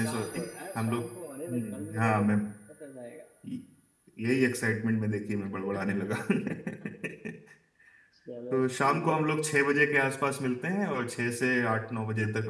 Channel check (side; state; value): both; identical; correlation 1.00